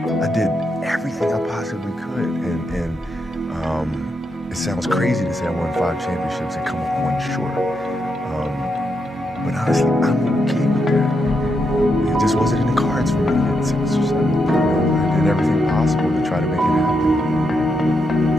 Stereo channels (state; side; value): normal; both; correlation 0.82